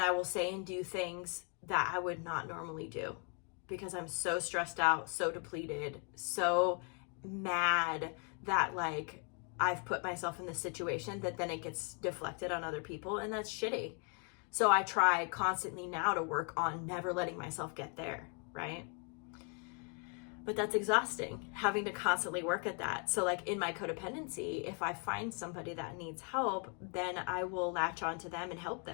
will say and do things that I would not normally do because I'm so stressed out, so depleted, so mad that like I've put myself in this situation that then it gets deflected on other people, and that's shitty. So I try constantly now to work on never letting myself get there, right? But that's exhausting, having to constantly work at that. So like in my codependency, if I find somebody that needs help, then I will latch onto them and help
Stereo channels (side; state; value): right; quieter; 39.0 dB